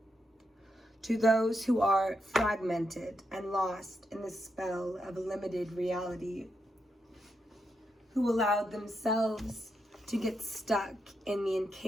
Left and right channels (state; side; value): normal; both; correlation 0.83